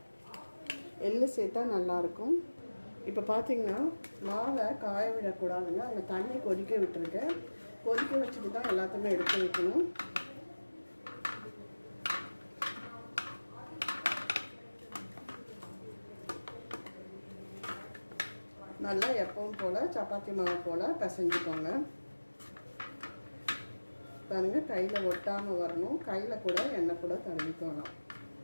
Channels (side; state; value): both; inverted; correlation -1.00